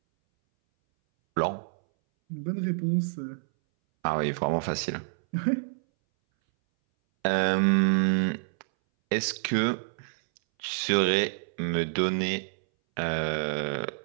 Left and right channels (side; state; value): left; silent; 60 dB below the other